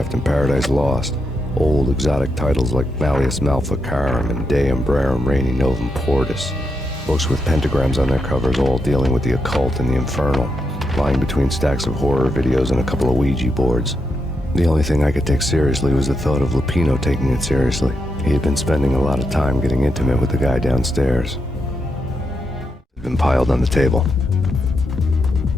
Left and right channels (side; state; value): both; normal; correlation 0.83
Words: and Paradise Lost. Old exotic titles like Malleus Maleficarum and De Umbrarum Reini Novum Portus. Books with pentagrams on their covers, all dealing with the occult and the infernal, lying between stacks of horror videos and a couple of Ouija boards. The only thing I could take seriously was the thought of Lupino taking it seriously. He had been spending a lot of time getting intimate with the guy downstairs. It had been piled on the table.